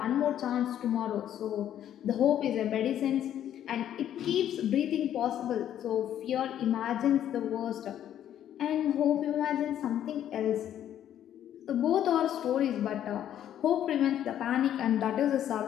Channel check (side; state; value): right; quieter; 10.8 dB